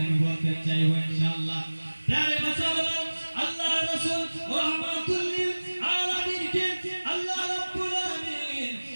আমি বলতে চাইব ইনশাআল্লাহ। প্রিয় মুসলমান, আল্লাহ রাসূল রাহমাতুল লিল আলামিনকে আল্লাহ রাব্বুল আলামিন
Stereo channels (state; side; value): inverted; both; correlation -1.00